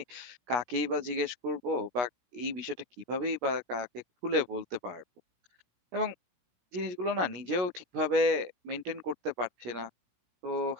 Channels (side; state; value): left; late; 17 ms